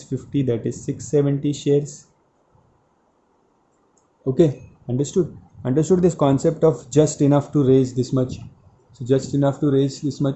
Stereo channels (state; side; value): identical; both; correlation 1.00